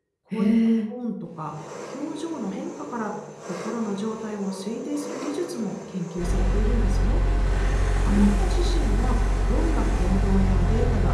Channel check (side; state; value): both; identical; correlation 1.00